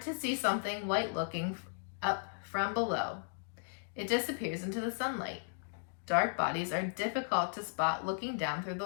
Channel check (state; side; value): silent; right; digital silence